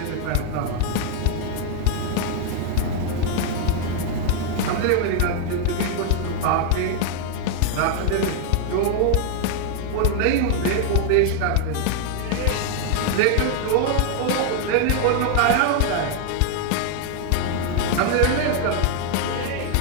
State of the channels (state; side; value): different; both; correlation 0.00